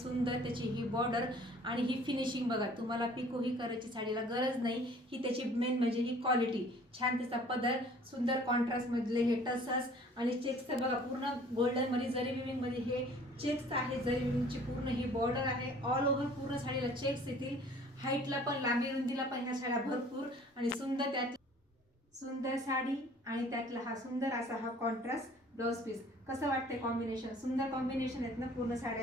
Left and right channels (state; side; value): normal; both; correlation 0.52